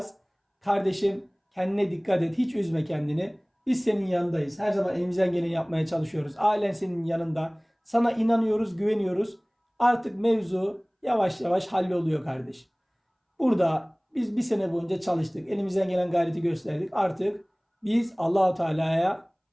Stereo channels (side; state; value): both; identical; correlation 1.00